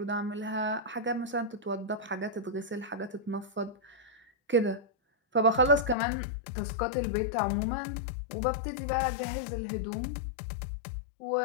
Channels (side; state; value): right; drops out; at 6.0 s